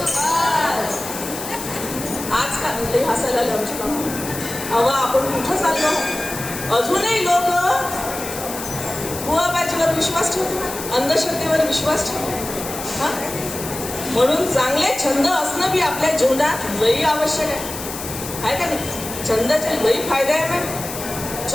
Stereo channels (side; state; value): left; noise; hiss, 9 dB below the sound